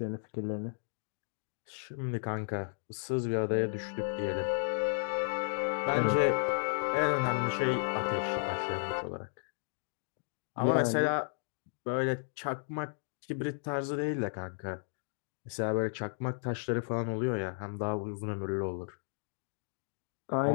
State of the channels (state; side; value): silent; right; digital silence